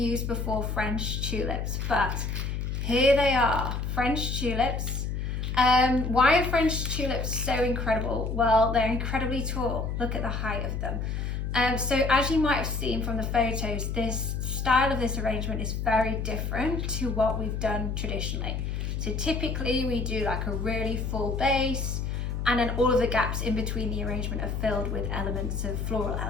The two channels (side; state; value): left; noise; hum, 2 dB below the sound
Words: before, French tulips, but here they are, French tulips. Why are French tulips so incredible? Well, they're incredibly tall. Look at the height of them. So as you might have seen from the photos, this style of this arrangement is very different to what we've done traditionally. So typically we do like a really full base, and then all of the gaps in between the arrangement are filled with elements of floral